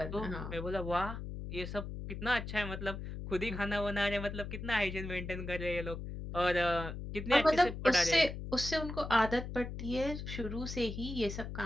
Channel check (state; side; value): noise; left; hum, 7 dB below the sound